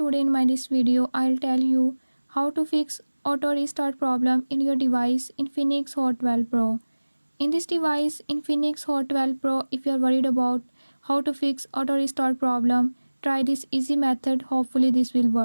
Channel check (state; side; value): inverted; both; correlation -1.00